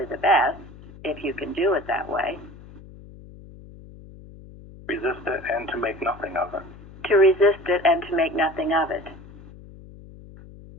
the best, if you can do it that way? Resist it and to make nothing of it. To resist it and to make nothing of it.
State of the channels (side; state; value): left; noise; hum, 19 dB below the sound